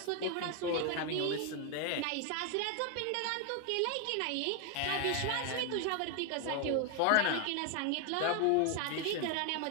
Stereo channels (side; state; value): both; different; correlation 0.01